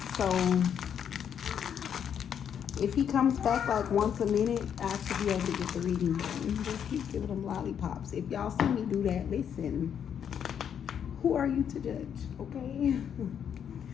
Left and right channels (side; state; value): right; quieter; 8.4 dB